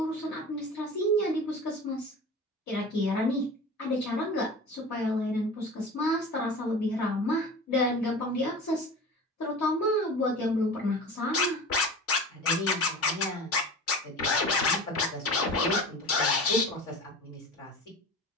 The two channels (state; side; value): normal; both; correlation 0.34